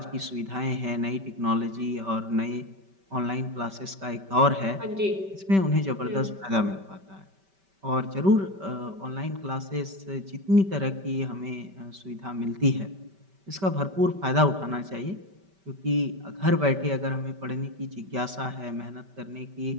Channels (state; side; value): late; left; 5.2 ms